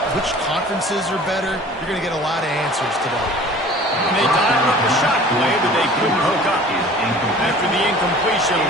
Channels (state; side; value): normal; both; correlation 0.46